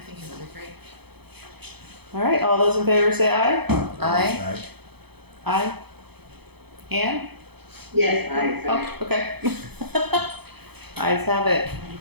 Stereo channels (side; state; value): left; late; 0.98 ms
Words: think it would be great. All right, all those in favor say aye. Aye. Aye. Ann? Yes, I. Oh, okay. Ayes have it.